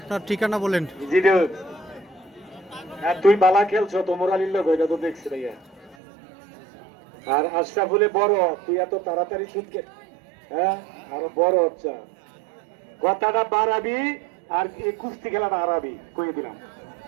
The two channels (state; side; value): drops out; left; at 6.0 s